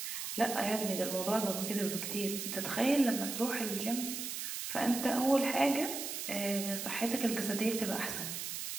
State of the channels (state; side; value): noise; right; hiss, 5 dB below the sound